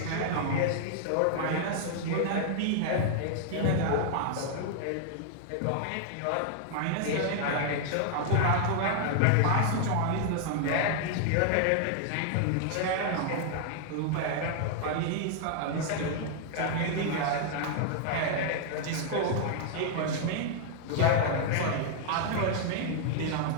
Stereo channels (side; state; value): both; different; correlation -0.01